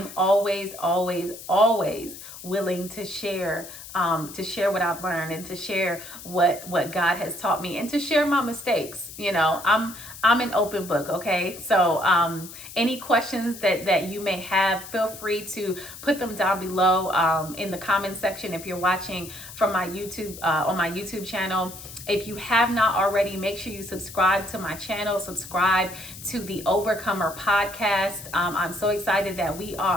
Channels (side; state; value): left; noise; hiss, 14 dB below the sound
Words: always, always, always willing to share what I've learned, and to share what God has taught me, and to share my mistakes. I'm an open book. Okay. So, any questions that you may have, feel free to put them down below, in the comment section. If you're watching from my YouTube, on my YouTube channel, if you have not already, make sure you subscribe to my channel, subscribe to the Overcomer podcast. I'm so excited that we